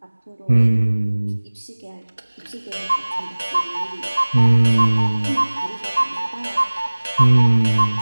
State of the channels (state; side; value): inverted; both; correlation -1.00